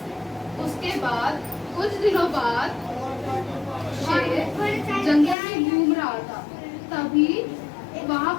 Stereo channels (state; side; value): drops out; right; at 5.4 s